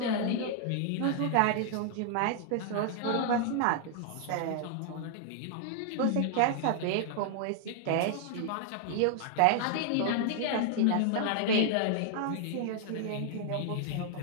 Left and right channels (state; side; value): different; both; correlation 0.00